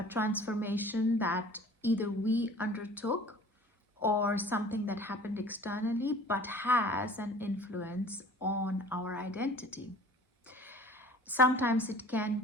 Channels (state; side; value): normal; both; correlation 0.46